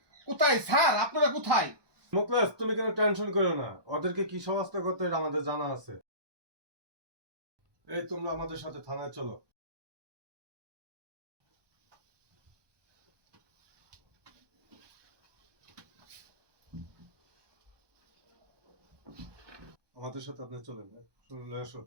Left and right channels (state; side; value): late; left; 1.2 ms